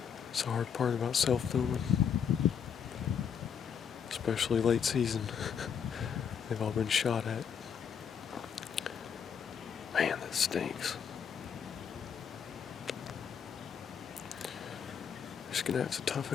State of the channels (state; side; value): quieter; right; 7.4 dB